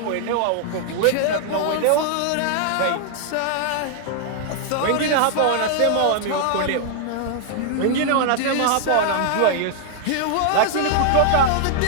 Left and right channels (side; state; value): both; different; correlation 0.00